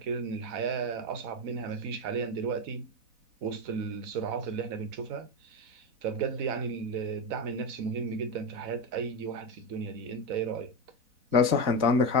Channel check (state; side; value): late; left; 4.0 ms